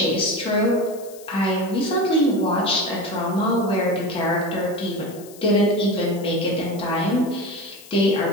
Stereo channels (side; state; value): left; noise; hiss, 20 dB below the sound